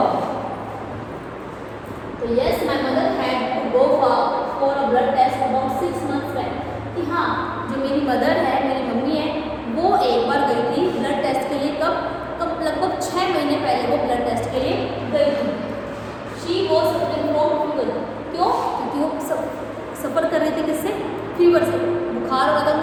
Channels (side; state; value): both; identical; correlation 1.00